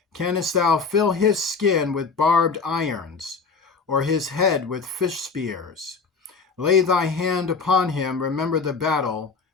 Canst thou fill his skin with barbed irons, or his head with fish spears? Lay thy hand upon him, remember the battle,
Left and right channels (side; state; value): right; quieter; 4.9 dB